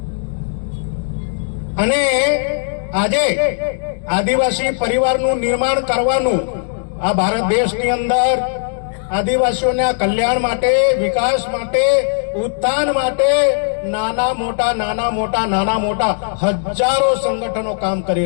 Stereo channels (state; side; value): silent; right; digital silence